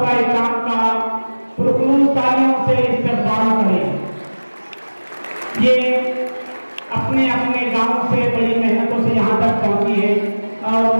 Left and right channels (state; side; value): inverted; both; correlation -1.00